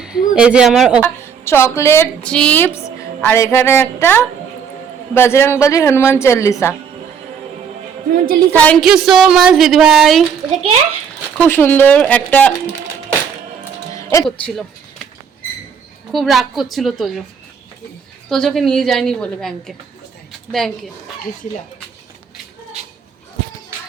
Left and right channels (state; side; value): quieter; left; 7.0 dB